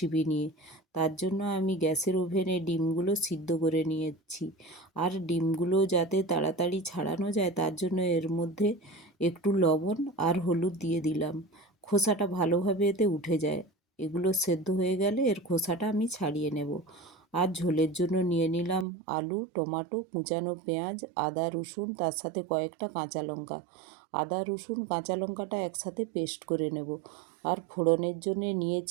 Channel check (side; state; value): left; drops out; at 18.9 s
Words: নিয়ে। তার জন্য আমি গ্যাসের ওভেনে ডিমগুলো সিদ্ধ করে নিয়েছি। আর ডিমগুলো যাতে তাড়াতাড়ি ছাড়ানো যায় তার জন্য এর মধ্যে একটু লবণ আর হলুদ দিয়ে দিলাম। খোসাটা ভালোভাবে এতে উঠে যায়। এগুলো সেদ্ধ হয়ে গেলে এর খোসাটা আমি ছাড়িয়ে নেব। আর ঝোলের জন্য নিয়ে নিলাম আলু, টমেটো, কুচানো পেঁয়াজ, আদা, রসুন, তার সাথে কয়েকটা কাঁচা লঙ্কা। আদা, রসুন, কাঁচা লঙ্কাটা একসাথে পেস্ট করে নেব। আর ফোড়নের জন্য